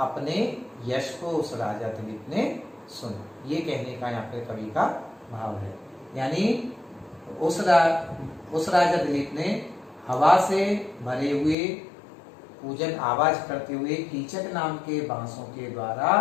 यश को उस राजा दिलीप ने सुना। ये कहने का यहाँ पे कवि का भाव है। यानी उस राजा दिलीप ने हवा से भरे हुए पूजन आवाज करते हुए कीचक नाम के बांसों के द्वारा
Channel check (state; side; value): drops out; right; at 11.6 s